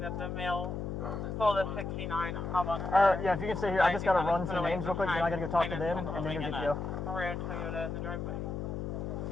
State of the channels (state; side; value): noise; left; hum, 4 dB below the sound